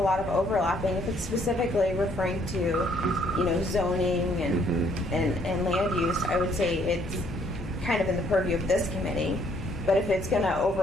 lot of overlapping. If it's specifically referring to, zoning and land use, I would say it's kind of in the purview of this committee. But if it's going to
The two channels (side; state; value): both; normal; correlation 0.66